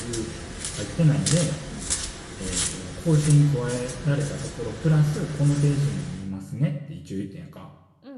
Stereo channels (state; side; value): identical; both; correlation 1.00